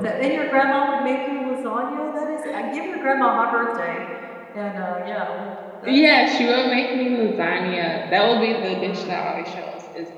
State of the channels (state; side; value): identical; both; correlation 1.00